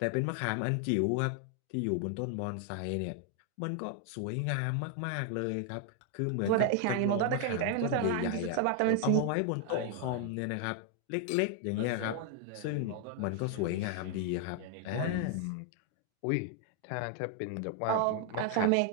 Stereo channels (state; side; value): different; both; correlation 0.00